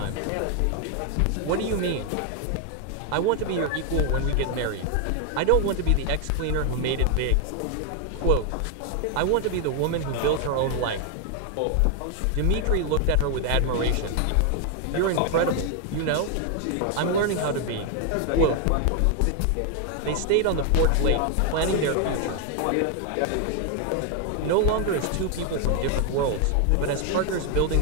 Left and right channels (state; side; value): different; both; correlation 0.00